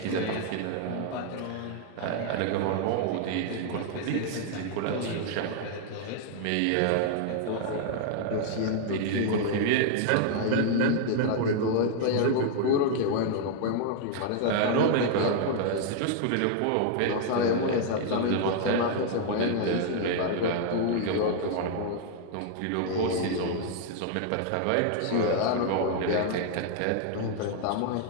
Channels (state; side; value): different; both; correlation 0.00